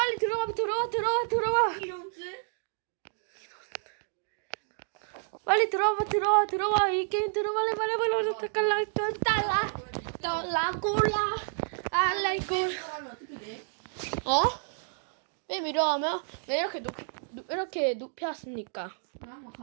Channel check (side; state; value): left; silent; digital silence